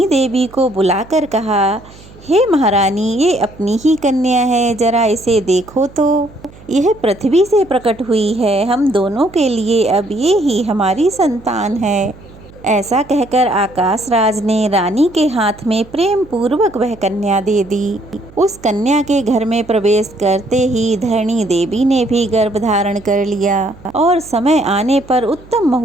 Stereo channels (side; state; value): right; noise; hum, 22 dB below the sound